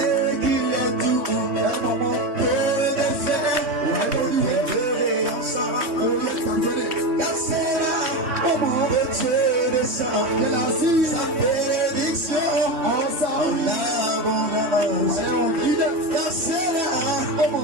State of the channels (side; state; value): left; late; 3.1 ms